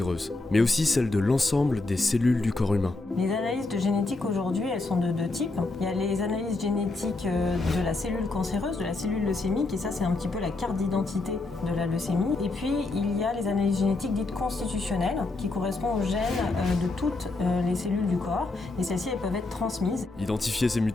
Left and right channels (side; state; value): right; quieter; 3.2 dB